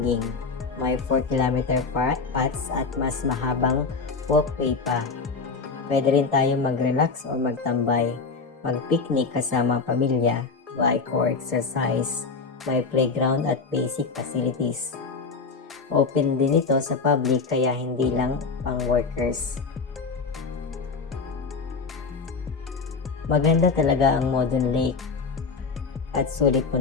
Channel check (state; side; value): quieter; right; 4.7 dB